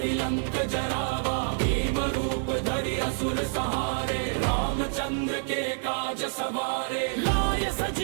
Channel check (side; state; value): left; silent; digital silence